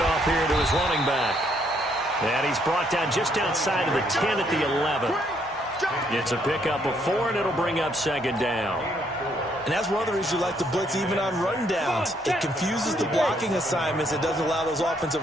here to his running back. And he's brought down just outside of the 10 at the 11. It's a pickup of 4, and it'll bring up 2nd down. And that's one of the reasons you like to blitz even on run downs. It confuses the blocking assignments. It doesn't allow those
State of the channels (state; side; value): normal; both; correlation 0.70